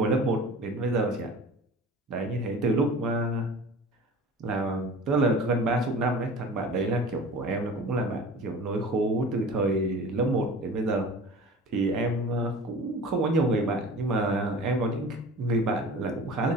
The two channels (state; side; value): normal; both; correlation 0.40